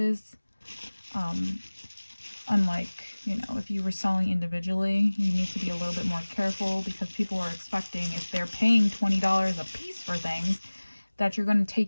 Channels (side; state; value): both; inverted; correlation -1.00